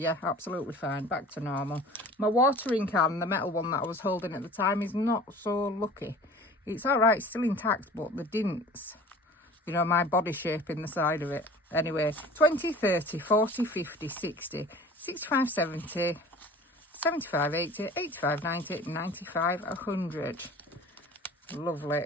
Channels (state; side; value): normal; both; correlation 0.43